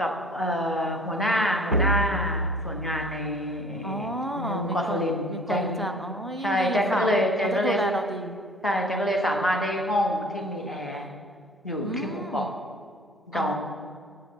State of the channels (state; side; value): normal; both; correlation 0.50